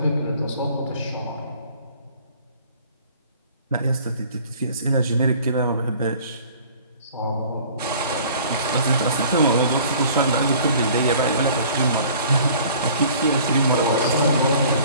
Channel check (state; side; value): inverted; both; correlation -0.51